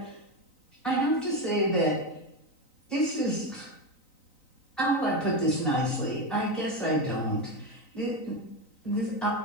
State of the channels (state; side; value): late; right; 3.9 ms